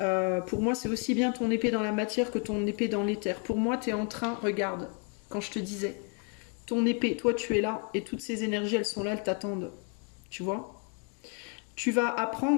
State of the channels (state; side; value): quieter; right; 37.4 dB